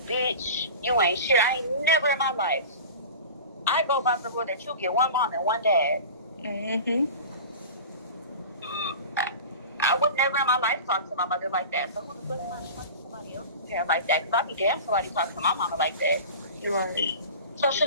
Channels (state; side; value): inverted; both; correlation -0.34